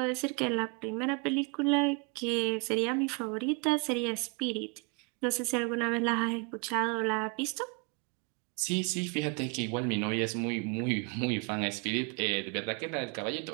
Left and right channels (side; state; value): left; quieter; 31.9 dB